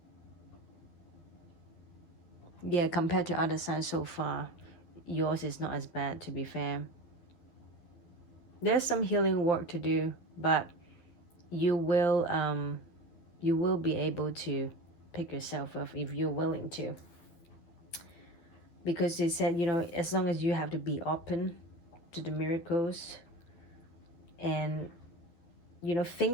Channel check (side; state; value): right; late; 12 ms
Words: Yeah, compared to other signs so far, yours is not as bad, to be fair. There's some healing work to do, but you will be able to pick yourself up if you're willing to. Because they said, as long as you have to be open to the miracles, and